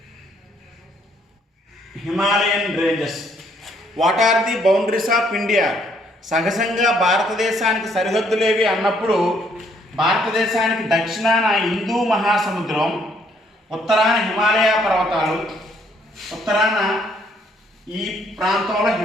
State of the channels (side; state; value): both; normal; correlation 0.67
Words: Himalayan ranges. What are the boundaries of India? సహజంగా భారతదేశానికి సరిహద్దులేవి అన్నప్పుడు భారతదేశానికి దక్షిణాన హిందూ మహాసముద్రం, ఉత్తరాన హిమాలయ పర్వతాలు, ఉత్తరాన ఈ ప్రాంతంలో